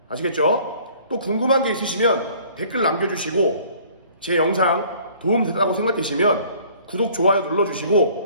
아시겠죠? 또 궁금한 게 있으시면 댓글 남겨주시고 제 영상 도움되다고 생각되시면 구독, 좋아요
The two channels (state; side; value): inverted; both; correlation -0.54